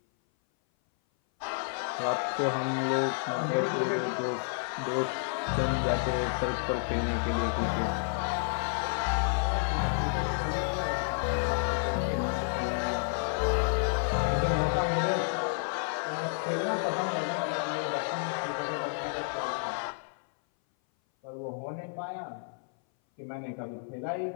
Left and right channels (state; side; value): silent; right; 58 dB below the other